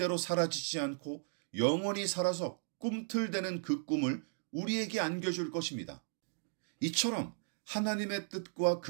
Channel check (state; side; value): silent; left; digital silence